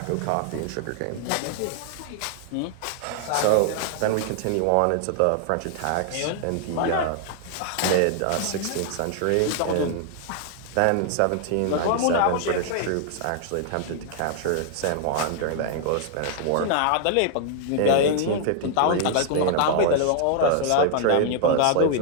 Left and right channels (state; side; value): different; both; correlation 0.00